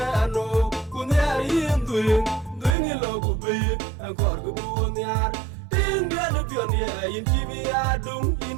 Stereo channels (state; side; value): drops out; left; at 2.8 s